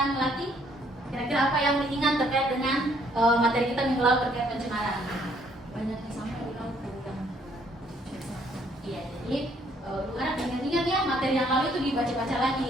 Melati. Kira-kira apa yang diingat terkait dengan materi kita minggu lalu terkait pencemaran? Banyak yang sampai di laut. Iya, jadi harap ingat-ingat ya materi yang lalu itu dibaca-baca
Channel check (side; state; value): both; normal; correlation 0.66